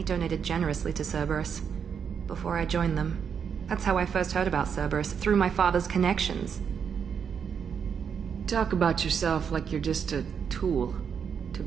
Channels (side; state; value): left; quieter; 7.1 dB